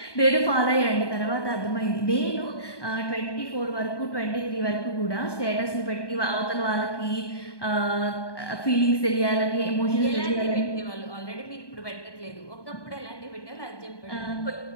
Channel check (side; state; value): right; late; 1.2 ms